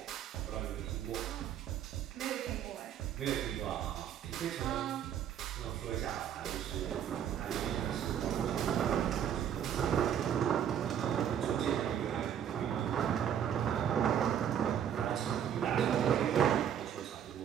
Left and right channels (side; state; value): left; quieter; 9.2 dB